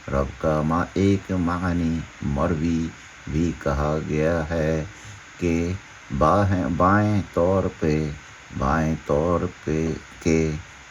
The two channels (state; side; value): identical; both; correlation 1.00